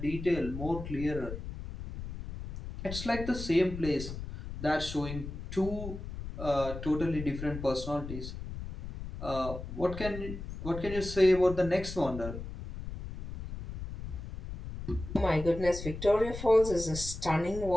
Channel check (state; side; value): noise; left; rumble, 9 dB below the sound